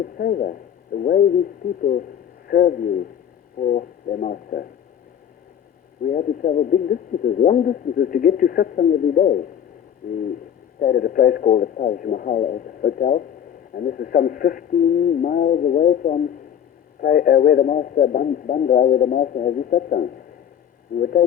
favor, the way these people serve you for their Master. We had to travel big distances, long distances, to get to Satsang every day. We stayed at a place called the Taj Mahal Hotel, and this is some 15 miles away from where the Master, Bandra, where the Master has his Satsang. We were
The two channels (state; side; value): quieter; right; 9.2 dB